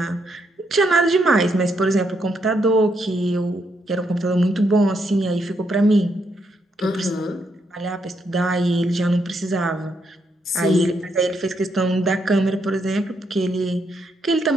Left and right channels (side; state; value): both; normal; correlation 0.77